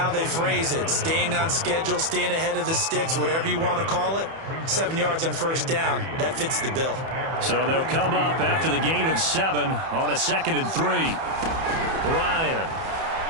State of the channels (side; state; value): left; late; 31 ms